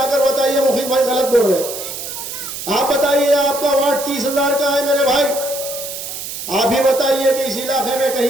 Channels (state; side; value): noise; right; hiss, 8 dB below the sound